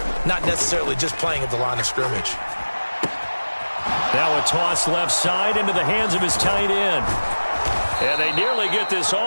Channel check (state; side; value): inverted; both; correlation -1.00